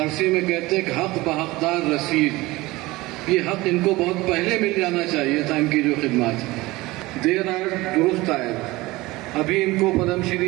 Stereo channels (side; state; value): left; quieter; 20.3 dB